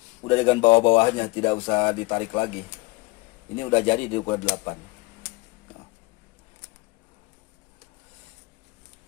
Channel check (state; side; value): quieter; right; 23.0 dB